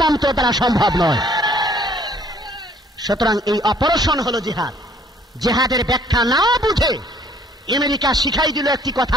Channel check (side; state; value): both; normal; correlation 0.59